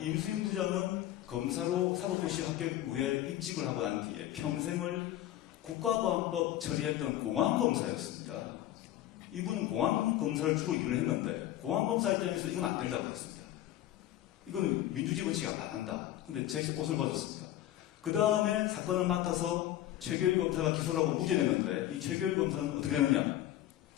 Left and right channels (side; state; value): right; quieter; 13.4 dB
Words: 부장은 검사로 사법고시 합격 후에 입직을 하고 난 뒤에 평생을 국가보안법 처리했던 공안검사였습니다. 이분은 공안검사를 주로 일을 했는데 공안검사 입장에서 이건 안 된다고 했습니다. 이거는 민주주의 원칙이 안 한다. 근데 제 옷을 벗었습니다. 그 다음에 사건을 맡아서 최교일 검사가 기소를 하고 무죄냈는데 이 최교일 검사는 어떻게 되느냐?